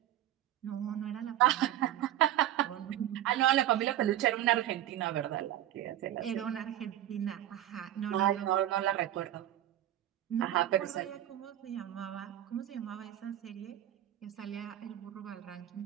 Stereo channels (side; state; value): left; quieter; 12.7 dB